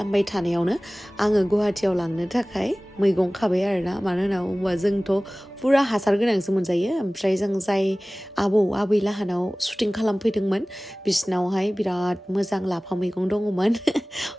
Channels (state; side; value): normal; both; correlation 0.98